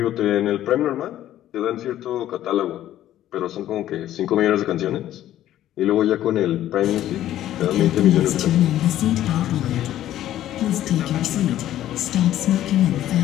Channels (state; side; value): quieter; right; 12.8 dB